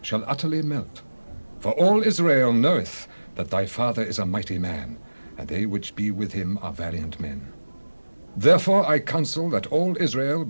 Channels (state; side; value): inverted; both; correlation -1.00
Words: utterly melt. For all Israel knoweth that thy father is a mighty man, and they which be with him are valiant men. Therefore I counsel that all Israel